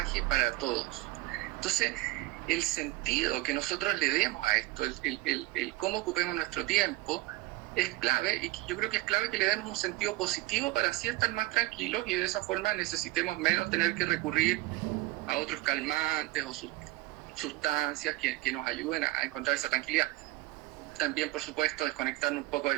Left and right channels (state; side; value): quieter; left; 19.5 dB